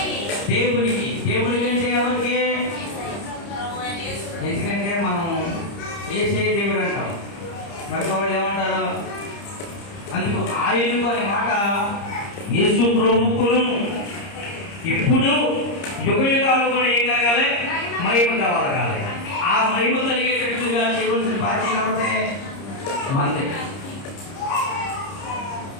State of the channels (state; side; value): late; right; 30 ms